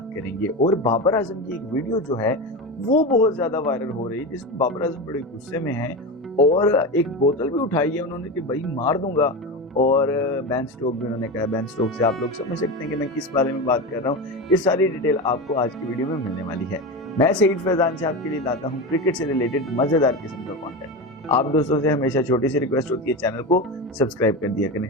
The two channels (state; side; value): normal; both; correlation 0.21